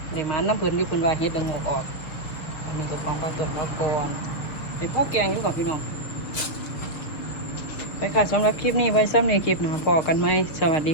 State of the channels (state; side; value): late; right; 6.1 ms